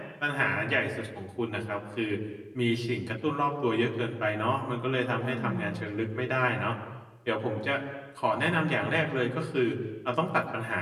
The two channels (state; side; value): identical; both; correlation 1.00